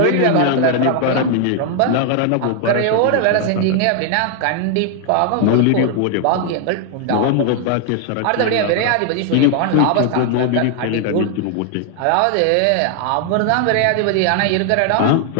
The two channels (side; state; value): both; different; correlation 0.00